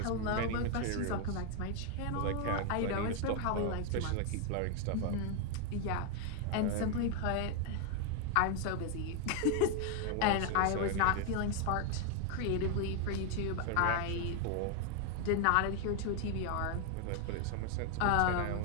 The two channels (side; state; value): both; different; correlation 0.01